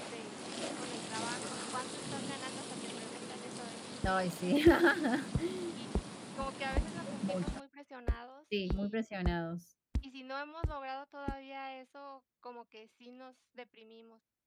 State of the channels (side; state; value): both; identical; correlation 1.00